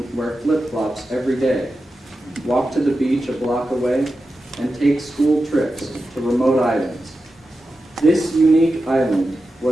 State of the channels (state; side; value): normal; both; correlation 0.91